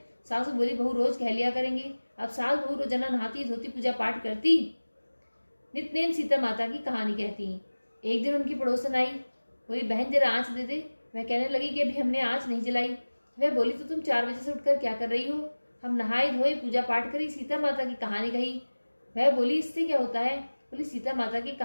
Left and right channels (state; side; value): inverted; both; correlation -1.00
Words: सासू बोली बहू रोज कह लिया करेंगे। अब सास बहू रोजाना नहाती धोती पूजा पाठ करती, नितनेम सीता माता की कहानी कहती। एक दिन उनकी पड़ोसन आई, बोली बहन जरा आँच दे दे। वह कहने लगी कि अभी हमने आँच नहीं जलाई। वह बोली तो तुम 4 बजे से उठकर क्या कर रही हो। हम नहाए धोए पूजा पाठ करी, सीता माता की कहानी कही। वह बोली इससे क्या होता है। बोली सीता माता की